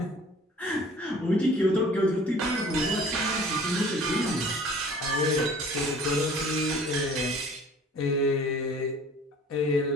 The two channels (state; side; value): normal; both; correlation 0.49